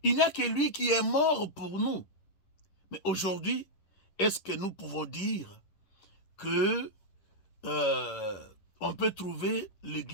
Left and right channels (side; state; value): right; late; 10 ms